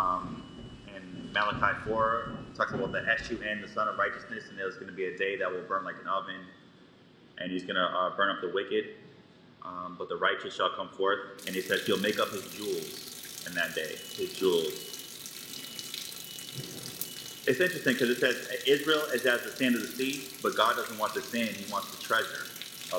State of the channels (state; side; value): identical; both; correlation 1.00